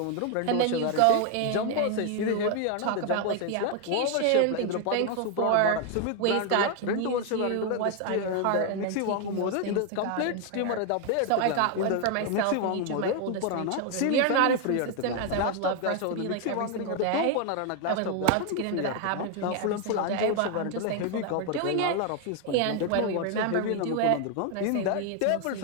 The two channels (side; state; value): both; different; correlation 0.01